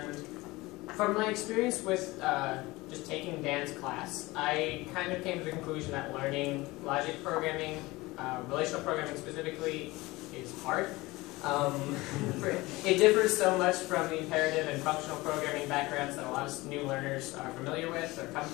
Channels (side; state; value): right; quieter; 21.0 dB